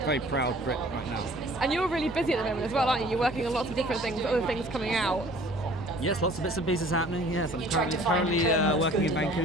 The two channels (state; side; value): normal; both; correlation 0.51